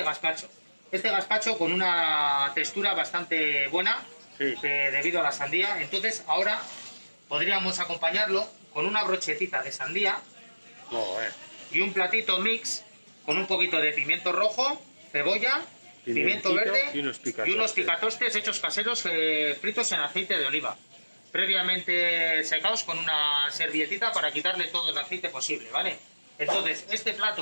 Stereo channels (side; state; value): both; inverted; correlation -1.00